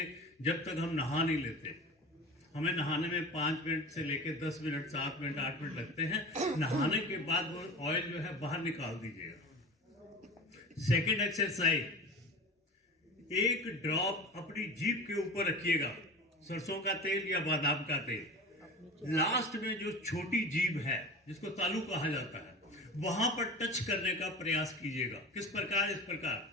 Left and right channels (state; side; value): normal; both; correlation 0.34